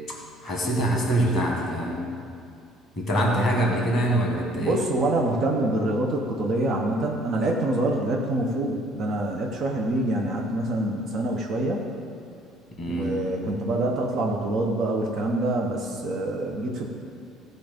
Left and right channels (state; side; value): normal; both; correlation 0.59